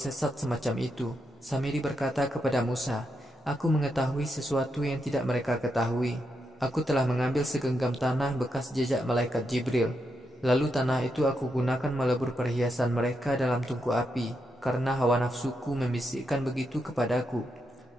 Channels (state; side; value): normal; both; correlation 0.83